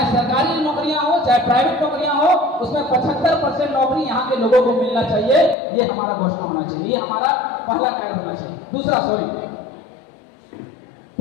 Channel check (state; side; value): drops out; right; at 5.6 s